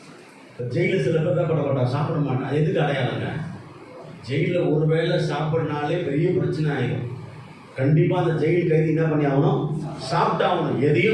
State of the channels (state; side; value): identical; both; correlation 1.00